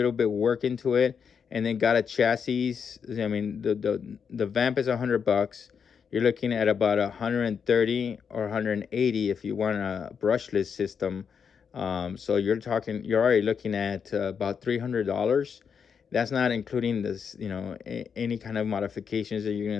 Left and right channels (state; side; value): quieter; right; 6.7 dB